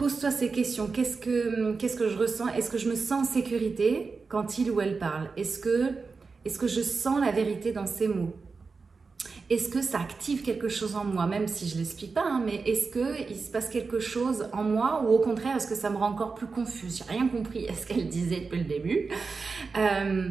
ces questions. Qu'est-ce que je ressens? Est-ce que je me sens en sécurité quand il ou elle parle? Est-ce que je sens la vérité dans ces mots? est-ce que ça active quelque chose en moi, même si je l'explique pas, hein, mais est-ce qu'il se passe quelque chose en moi ou au contraire, est-ce que ça me rend encore plus confuse? J'ai rien compris à ce qu'elle disait depuis le début.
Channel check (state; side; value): quieter; left; 4.5 dB